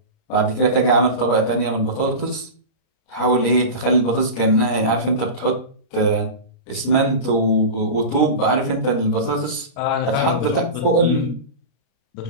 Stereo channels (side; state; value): right; late; 32 ms